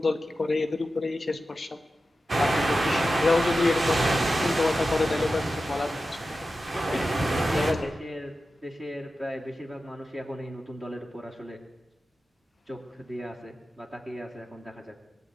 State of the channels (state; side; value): normal; both; correlation 0.93